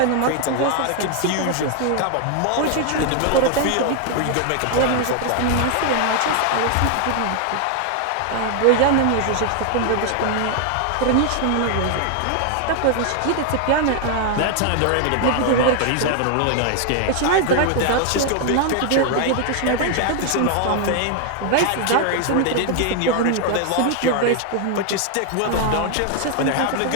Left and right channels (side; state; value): both; different; correlation 0.00